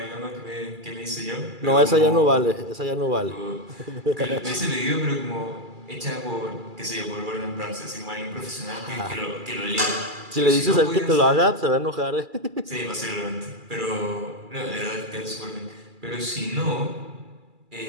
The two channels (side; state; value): left; late; 2.3 ms